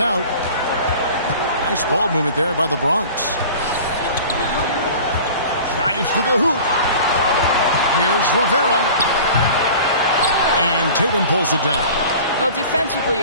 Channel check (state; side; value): inverted; both; correlation -0.41